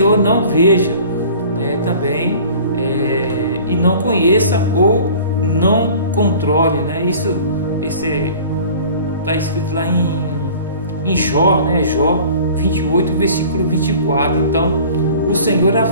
não veja, também e não conheça ou não controle, Isso está escrito lá em Jó, Jó 28, versículo 24. Então o Senhor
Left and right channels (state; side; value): inverted; both; correlation -0.45